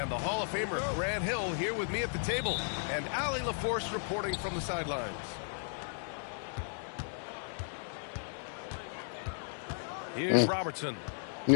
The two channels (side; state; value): right; silent; digital silence